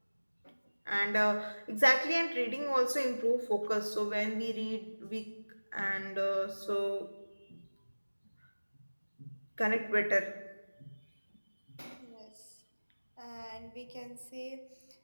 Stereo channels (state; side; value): inverted; both; correlation -1.00